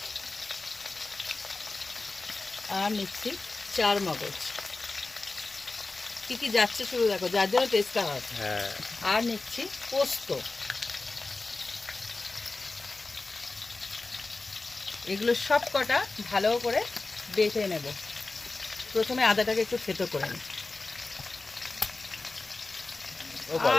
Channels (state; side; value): quieter; right; 3.5 dB